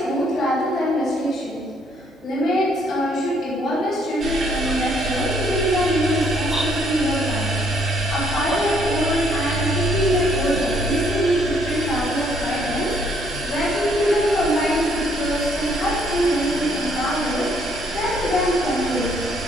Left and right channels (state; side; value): normal; both; correlation 0.67